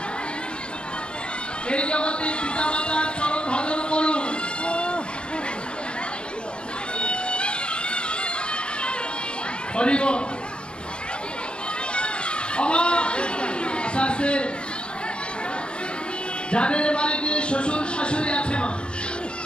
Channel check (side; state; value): right; late; 0.054 ms